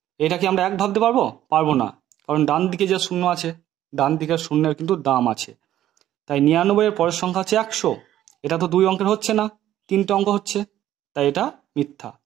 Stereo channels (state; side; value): quieter; left; 12.6 dB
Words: এটা কি আমরা 1 ভাবতে পারবো? পারবো না, কারণ ডান দিকে যে শূন্য আছে, ডান দিকের শূন্যের কিন্তু দাম আছে। তাই 99 এর পরের সংখ্যা হচ্ছে 100, এটা তো 2 অঙ্কের হচ্ছে না, 3টে অঙ্ক হচ্ছে, তাই এটা মিথ্যা।